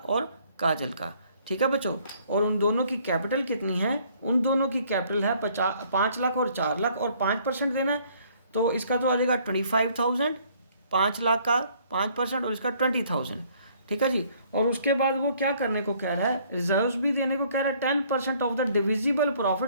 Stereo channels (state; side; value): inverted; both; correlation -0.61